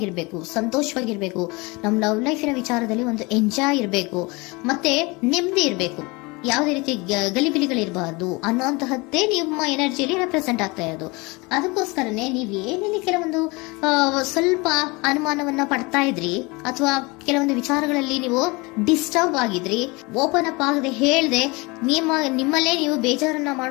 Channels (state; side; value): quieter; right; 25.9 dB